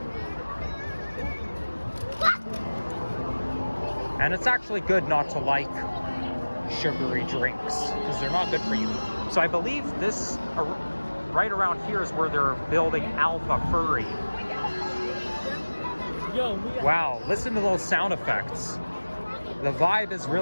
And it's actually good not to like sugary drinks because they're not good for you. So I believe this right around here is where they're building Alpha Furry. Wow, listen to those sound effects. The vibe is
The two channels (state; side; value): inverted; both; correlation -1.00